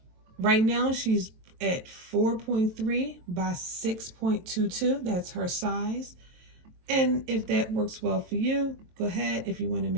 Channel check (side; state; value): left; late; 23 ms